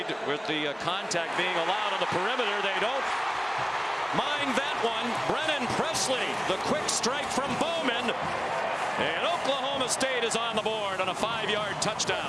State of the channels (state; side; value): identical; both; correlation 1.00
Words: with the contact being allowed on the perimeter. They don't mind that one. Brennan Presley, the quick strike from Bowman. And Oklahoma State is on the board on a 5-yard